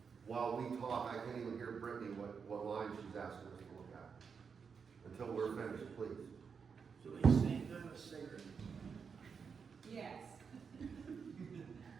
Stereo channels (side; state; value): left; quieter; 6.0 dB